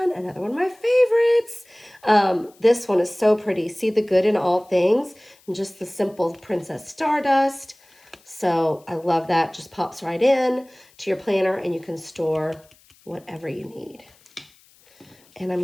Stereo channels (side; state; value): left; noise; hiss, 30 dB below the sound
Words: another one of my favorites. This one is so pretty. See the good in all things, and just the simple Princess Stardust. So I love that. Just pops right in to your planner, and you can store whatever you need. And I